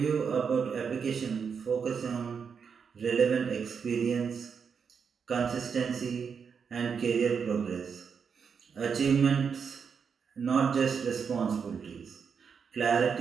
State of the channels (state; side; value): quieter; left; 6.3 dB